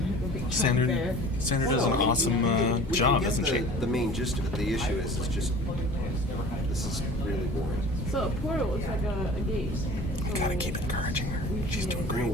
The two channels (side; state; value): both; normal; correlation 0.42